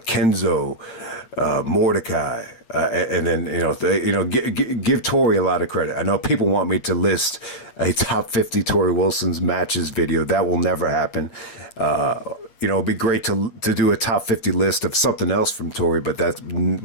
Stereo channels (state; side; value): late; right; 8.7 ms